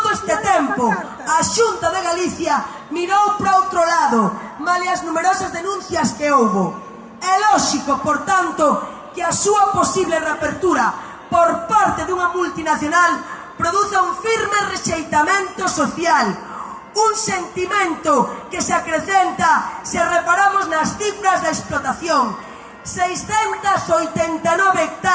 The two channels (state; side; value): identical; both; correlation 1.00